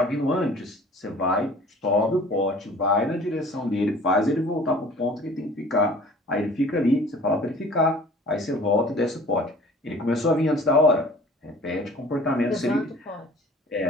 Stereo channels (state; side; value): normal; both; correlation 0.48